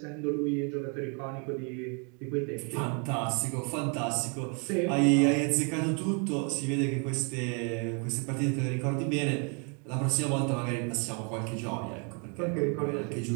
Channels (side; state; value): left; quieter; 36.7 dB